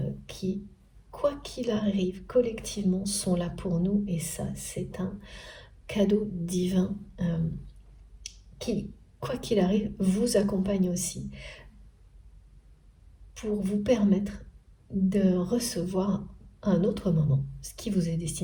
qui, quoi qu'il arrive, collectivement, sont là pour nous. Et ça, c'est un cadeau divin qui, quoi qu'il arrive, vous accompagne aussi pour vous permettre de recevoir à un autre moment ce qui vous est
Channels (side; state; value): both; identical; correlation 1.00